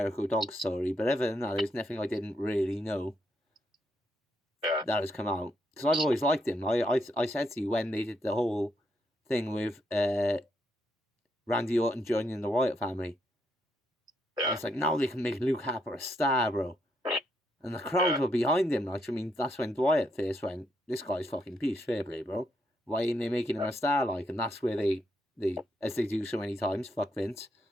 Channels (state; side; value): normal; both; correlation 0.78